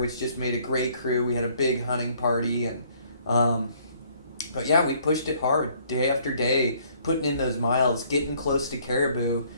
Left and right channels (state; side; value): inverted; both; correlation -0.62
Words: just made a great crew. We had a big hunting party, and but yeah, we pushed it hard day after day, putting in those miles, getting close to caribou,